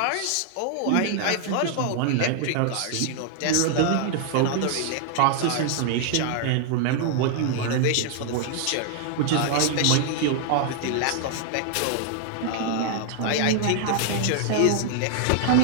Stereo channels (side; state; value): both; different; correlation 0.00